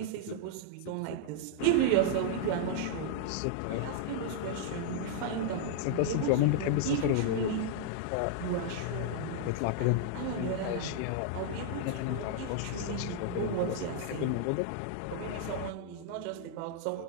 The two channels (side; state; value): both; different; correlation -0.01